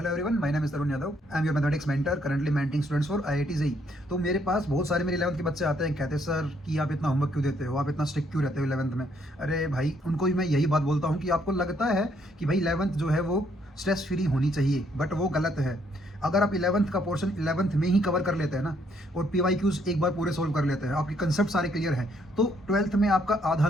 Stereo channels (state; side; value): normal; both; correlation 0.70